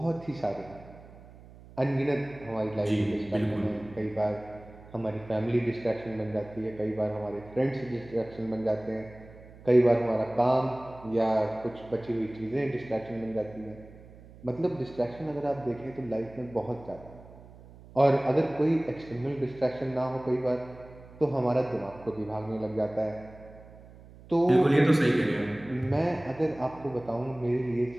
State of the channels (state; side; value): noise; right; hum, 20 dB below the sound